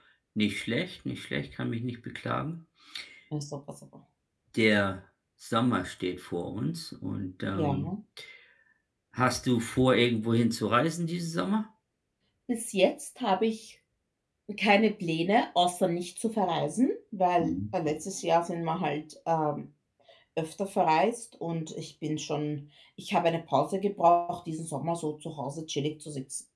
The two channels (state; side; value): identical; both; correlation 1.00